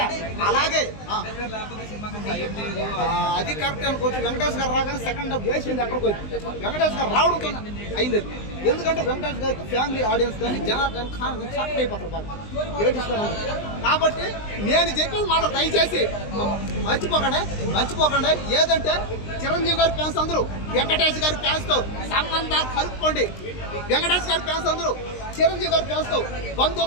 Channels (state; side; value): late; right; 20 ms